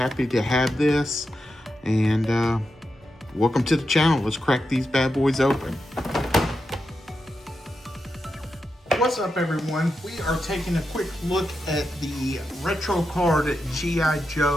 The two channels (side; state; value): both; normal; correlation 0.87